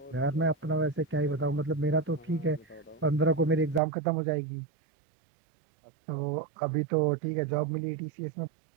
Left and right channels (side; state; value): left; drops out; at 3.8 s